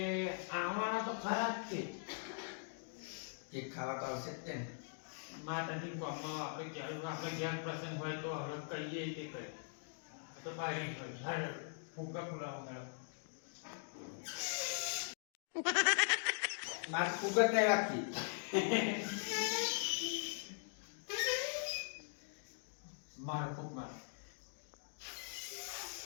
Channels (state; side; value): silent; right; digital silence